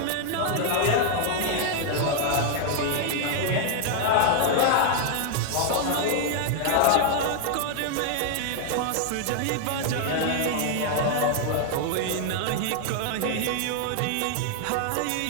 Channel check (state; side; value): different; both; correlation 0.00